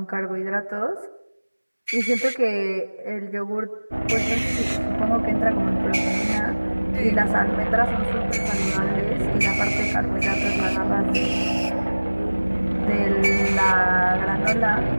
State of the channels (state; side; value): inverted; both; correlation -1.00